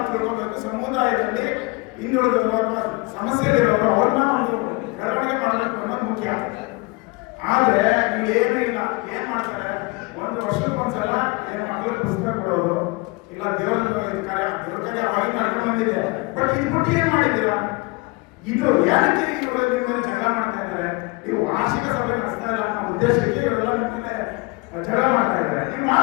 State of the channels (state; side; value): quieter; right; 26.1 dB